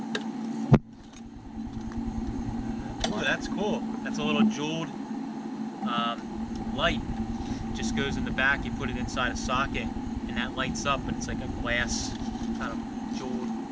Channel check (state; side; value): identical; both; correlation 1.00